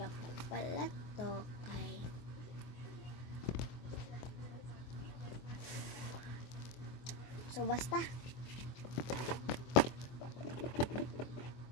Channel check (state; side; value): late; right; 24 ms